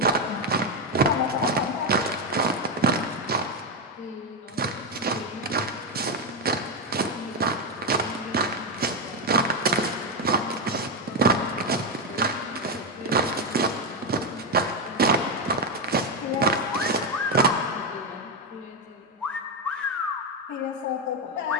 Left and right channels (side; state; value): both; normal; correlation 0.07